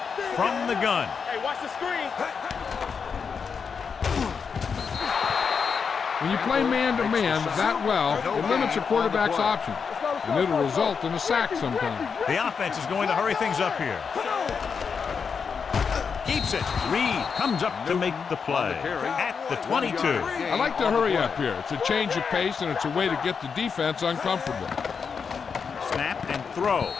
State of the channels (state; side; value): quieter; right; 6.0 dB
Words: From the gun. Hey, watch the screen. When you play man-to-man that well, it limits your quarterback's options, and it'll result in a sack sometimes. The offense is going to hurry things up here. Keeps it. Reed comes up to make the play at the 22. I like to hurry up here. It's a change of pace, and it's a way to get the defense uncomfortable. Snap and throw.